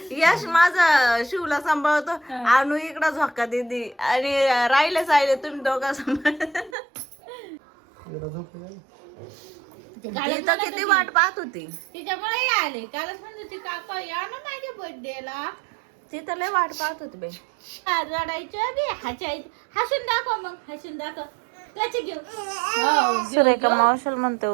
यश माझं शिवला सांभाळतो. आणू इकडं झोका देते आणि राहिले साहिले तुम्ही दोघा सांभाळ. एकदा झोपली आहे. ती तर किती वाट पाहत होती. तिच्यामुळे आले कालच म्हणत होती काका या ना माझ्या बर्थडेला. ती तर लय वाट पाहत होती बाई. रडायचं बी हसायचं. हसून दाखव मग हसून दाखव त्याचे घेऊ. सुरेखा मावशल म्हणते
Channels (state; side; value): drops out; left; at 6.8 s